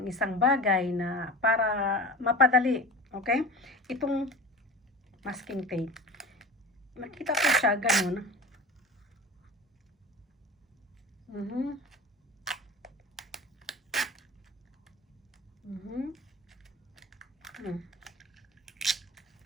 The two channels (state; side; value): normal; both; correlation 0.33